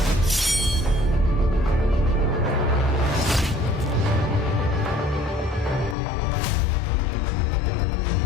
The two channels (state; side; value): drops out; right; at 6.0 s